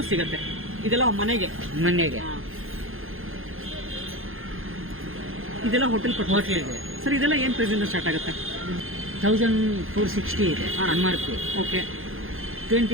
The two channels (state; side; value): late; left; 0.60 ms